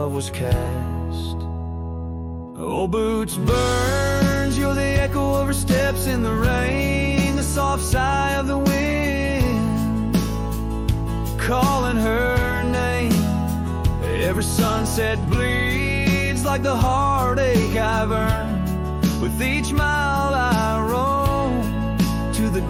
was cast. Old boots burns, you're the echo of her steps in the rain, the soft sigh of the wind calling her name. Every sunset bleeds like the heartache I've earned. With each mile I roam to the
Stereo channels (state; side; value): identical; both; correlation 1.00